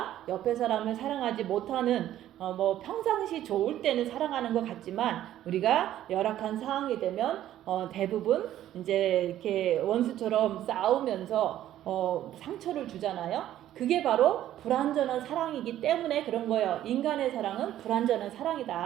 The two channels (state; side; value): quieter; left; 12.5 dB